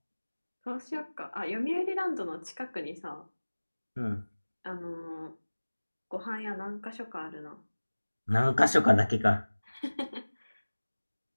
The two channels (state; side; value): inverted; both; correlation -1.00